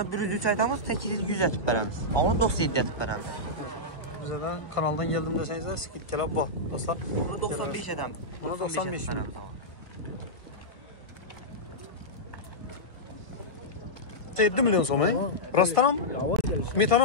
103 aytamız, 800 atıb bərəmiz. Onu 97 atıb bərəmiz. Bize de kanaldan geldim deseniz skit gelip bak. Asla. Bunu 95 adam. Buna 95 mi? 7 milyon so'm, rostdan mı?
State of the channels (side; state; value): right; late; 1.5 ms